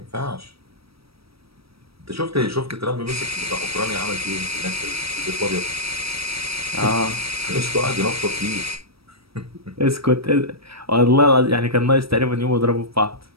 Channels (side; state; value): left; late; 0.76 ms